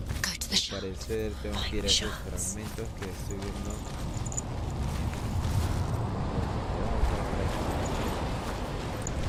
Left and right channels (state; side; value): identical; both; correlation 1.00